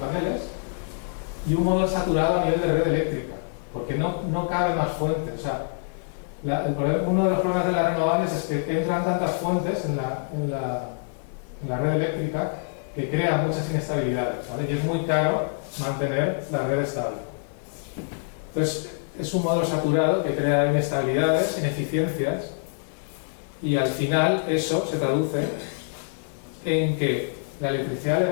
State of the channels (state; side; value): silent; right; 61 dB below the other